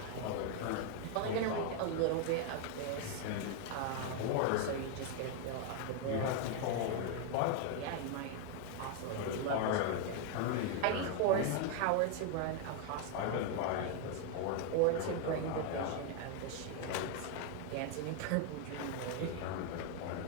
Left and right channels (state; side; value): different; both; correlation 0.01